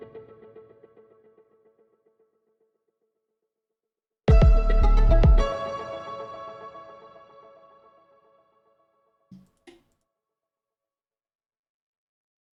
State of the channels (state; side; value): identical; both; correlation 1.00